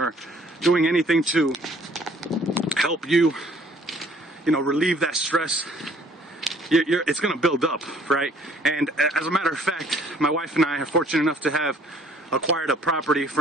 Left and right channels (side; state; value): both; normal; correlation 0.59